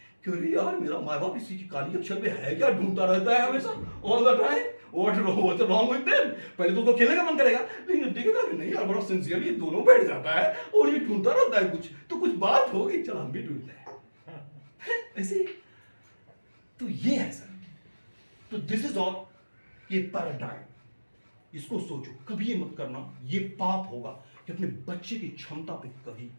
कि अरे यार मेरा माँ बाप इसी की काली अक्षर में है क्या, ढूंढता रहता है हमेशा all the time, what wrong with them. पहले तो खेलने का मन करेगा, लेकिन देखेगा कि नहीं यार बड़ा सिंसियरली दोनों बैठ जाता है और ये ढूंढता रहता है कुछ, तो कुछ बात होगी, चल हम भी ढूंढते हैं ऐसे। तो ये है सर, तो दिस इज ऑल, ये पैराडाइम, इसको सोचो, कभी ये मत करना, ये पाप होगा कि अपने बच्चे की क्षमता पे कभी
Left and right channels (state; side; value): inverted; both; correlation -1.00